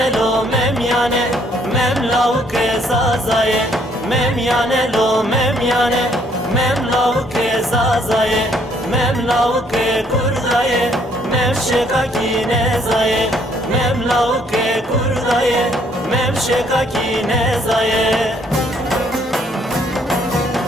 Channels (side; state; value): both; normal; correlation 0.65